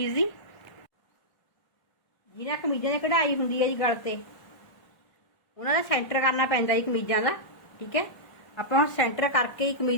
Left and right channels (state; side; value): late; right; 1.6 ms